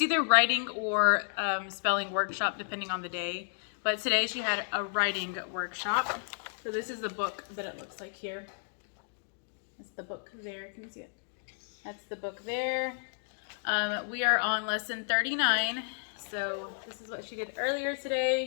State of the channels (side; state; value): right; silent; digital silence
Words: writing or spelling workshop, depending on the day. But today she had a writing workshop. So this is the book that it looks like here. That's the book there, can you see it? That's the book there. We are on lesson 39. So this is what she did earlier